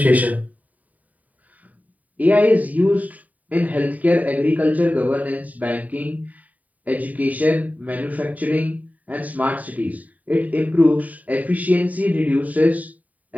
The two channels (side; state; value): left; late; 0.073 ms